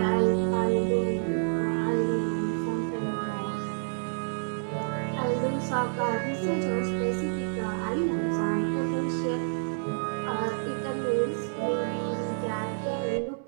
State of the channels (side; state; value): left; silent; digital silence